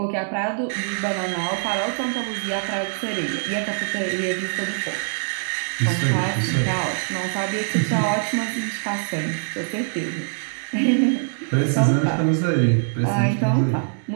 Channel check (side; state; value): left; silent; digital silence